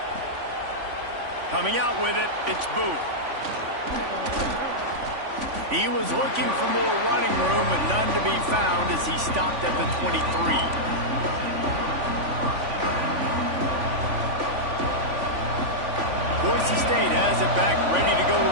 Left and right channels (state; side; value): late; left; 3.5 ms